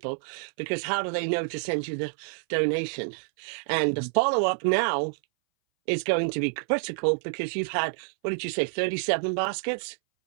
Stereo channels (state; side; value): silent; left; 59 dB below the other